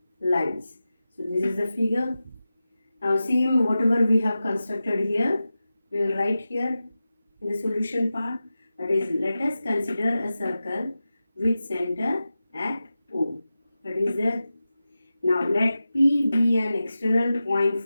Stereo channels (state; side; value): inverted; both; correlation -0.93